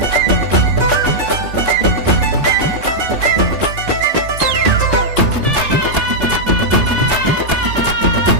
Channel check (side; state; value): left; late; 3.4 ms